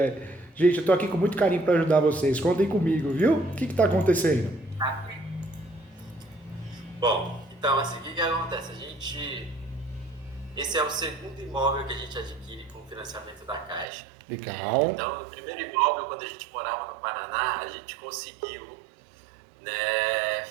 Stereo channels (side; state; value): left; drops out; at 13.9 s